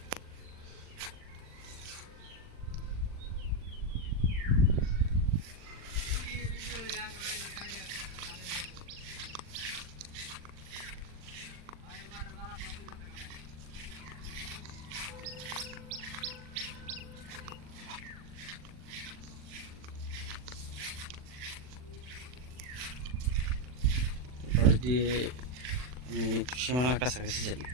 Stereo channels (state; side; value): late; left; 40 ms